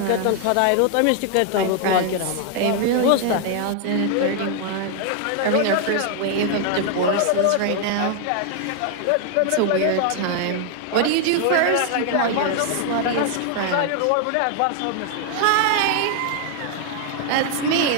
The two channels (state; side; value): different; both; correlation 0.00